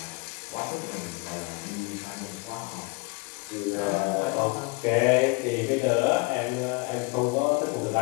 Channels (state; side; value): quieter; right; 28.9 dB